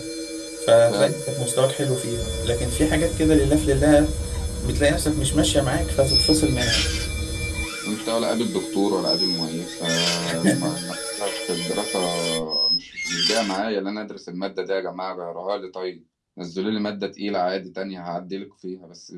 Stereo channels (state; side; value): identical; both; correlation 1.00